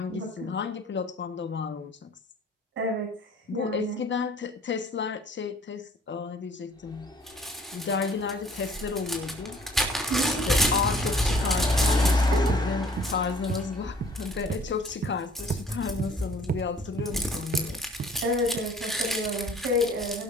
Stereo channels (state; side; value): normal; both; correlation 0.53